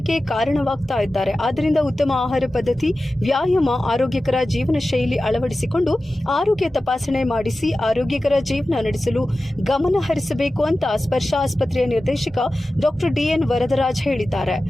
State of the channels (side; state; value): both; normal; correlation 0.95